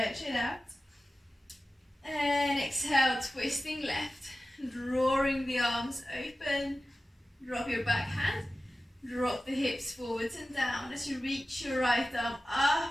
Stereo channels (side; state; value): both; normal; correlation 0.95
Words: it out. And exhale, twisting left, drawing the arms open. Drop your back hand, drop the hips forwards and down as you reach your right arm